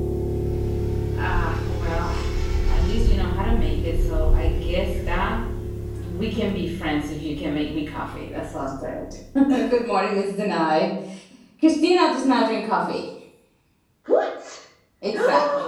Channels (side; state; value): both; identical; correlation 1.00